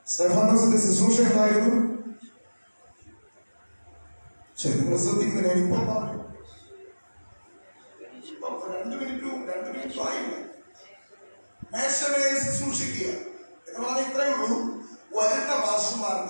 സ്തെഫാനോസിന്റെ ശുശ്രൂഷ എന്തായിരുന്നു? ശരി, നിങ്ങൾ ശ്രദ്ധിക്കുന്നില്ല. ഇപ്പൊ 2 മിനിറ്റും ആയില്ല. മേശമേൽ ശുശ്രൂഷിക്കുക എന്ന് പറഞ്ഞാൽ ഇത്രയേ ഉള്ളൂ. വരുന്ന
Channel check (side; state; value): both; inverted; correlation -1.00